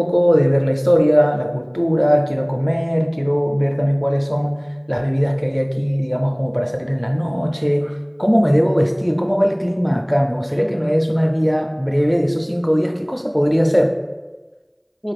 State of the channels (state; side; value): identical; both; correlation 1.00